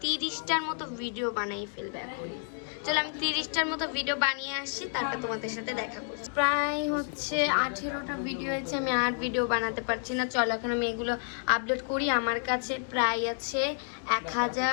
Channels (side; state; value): right; silent; 58 dB below the other